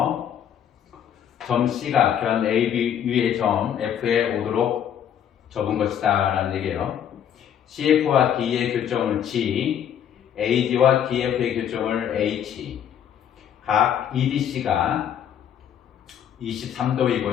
점 C가 변 AB 위의 점 F에 오도록 접은 것이다 라는 얘기예요. CF와 D의 교점을 G, AD와 DF의 교점을 H, 각 EDC가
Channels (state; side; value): quieter; right; 9.4 dB